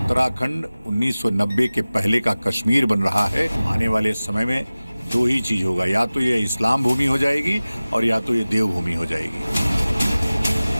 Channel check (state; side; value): inverted; both; correlation -0.98